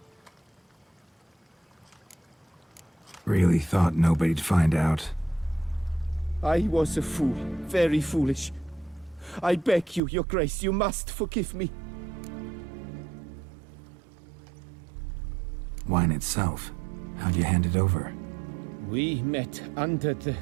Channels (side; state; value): left; drops out; at 10.0 s